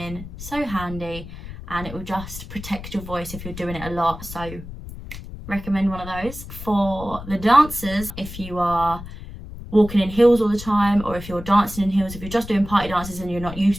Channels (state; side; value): noise; left; rumble, 12 dB below the sound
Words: so handy, and it will just protect your voice if you're doing it a lot. So recommend one of those. For the dancers, if you are walking in heels all the time, or if you're dancing in heels, if you're just doing party dances and you're not